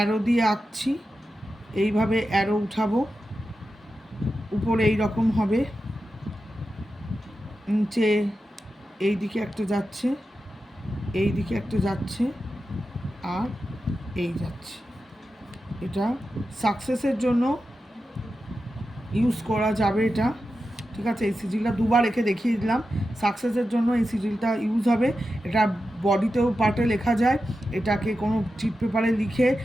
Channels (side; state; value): both; normal; correlation 0.91